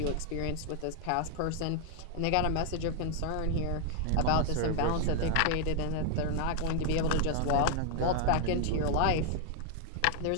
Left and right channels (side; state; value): both; different; correlation 0.00